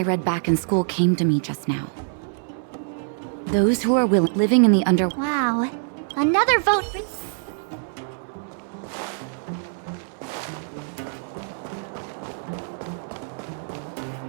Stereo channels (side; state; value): left; silent; 62 dB below the other